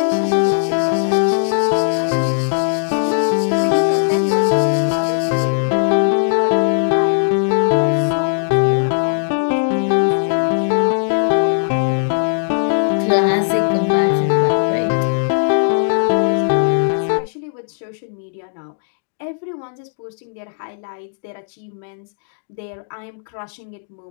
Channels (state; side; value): silent; right; digital silence